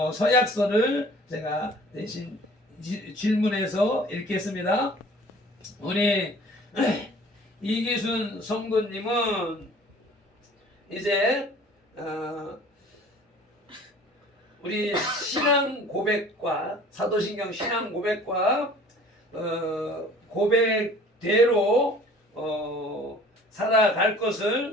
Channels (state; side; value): normal; both; correlation 0.49